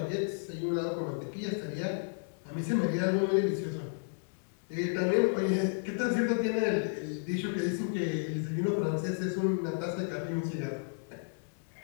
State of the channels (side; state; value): right; silent; digital silence